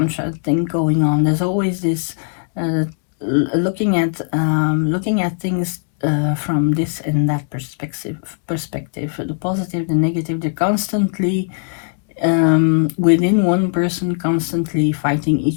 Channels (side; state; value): right; silent; 64 dB below the other